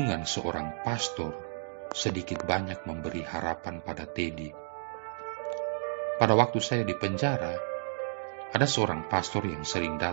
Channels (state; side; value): silent; left; digital silence